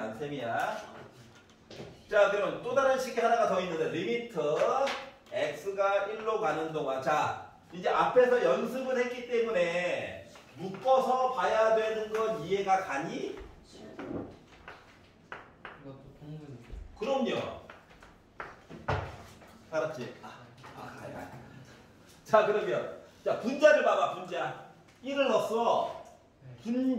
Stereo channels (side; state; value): both; identical; correlation 1.00